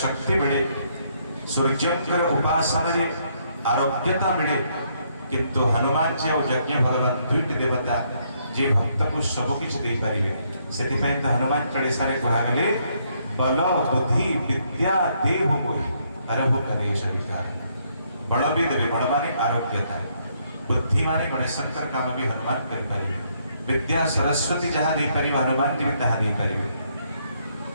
शक्ति मिले सूर्यकर उपासना रे आरोग्यता मिले किंतु हनुमान जी और यज्ञ भगवान दुईट देवता जे भक्त को सब किछ दे पारिबे सेति पय त हनुमान चालीसा रे कहा गेले बल बुद्धि विद्या देव मोहि हरहु कलेश विकार बल भी देवे बल माने आरोग्यता बुद्धि माने गणेशंकर काम भी हनुमान कर पारिबे विद्या सरस्वती जहाँ दे पारिबे हनुमान जी तहा दे पारिबे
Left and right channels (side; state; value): both; inverted; correlation -0.72